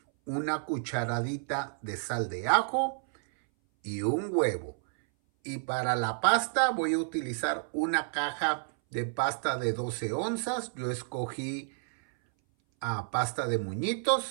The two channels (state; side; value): silent; left; 58 dB below the other